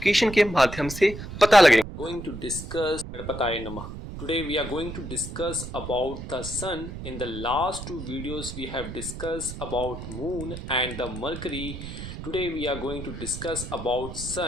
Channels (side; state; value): right; noise; rumble, 9 dB below the sound